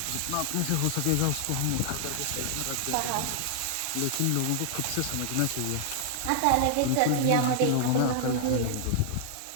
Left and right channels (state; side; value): different; both; correlation 0.00